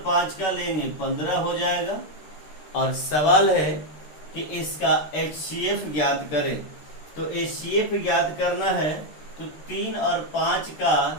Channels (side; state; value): right; late; 13 ms